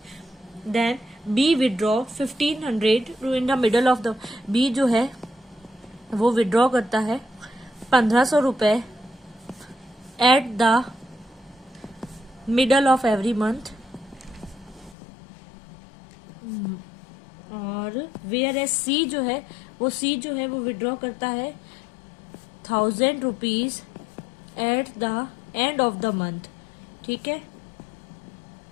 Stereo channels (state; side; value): drops out; right; at 15.0 s